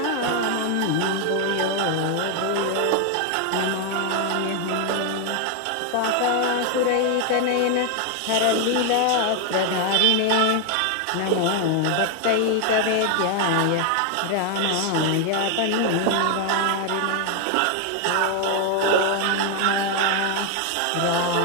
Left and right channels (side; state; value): both; different; correlation 0.00